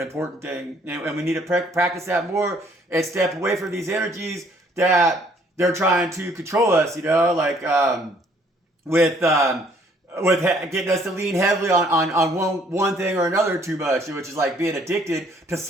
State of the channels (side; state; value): both; normal; correlation 0.62